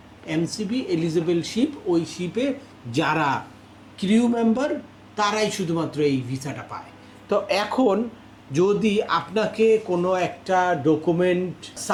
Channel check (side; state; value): both; identical; correlation 1.00